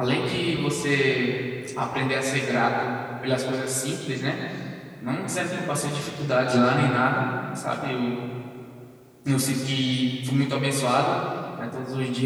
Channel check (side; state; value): both; identical; correlation 1.00